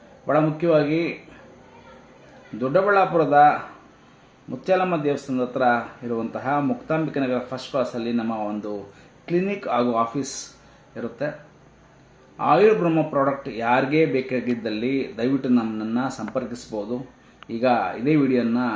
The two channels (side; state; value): both; identical; correlation 1.00